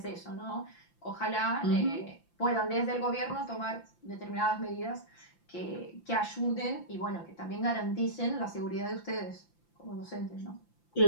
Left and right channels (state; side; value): late; right; 5.8 ms